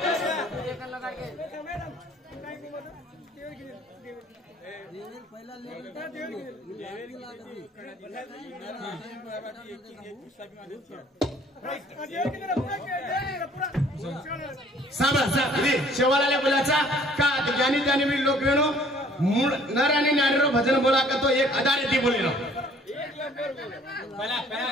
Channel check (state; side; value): normal; both; correlation 0.56